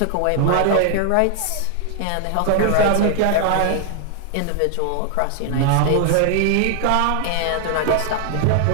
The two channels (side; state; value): both; different; correlation 0.00